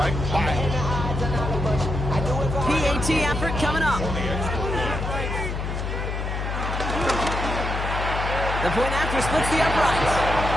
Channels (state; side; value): noise; left; hum, 3 dB below the sound